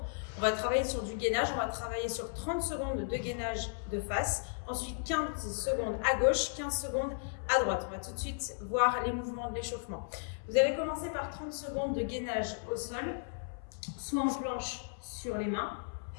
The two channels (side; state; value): right; silent; 55 dB below the other